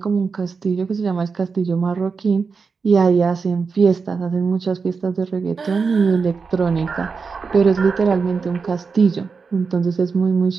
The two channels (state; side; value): quieter; left; 5.1 dB